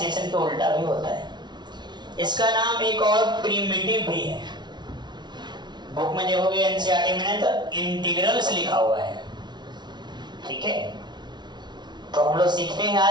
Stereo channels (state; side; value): late; left; 0.21 ms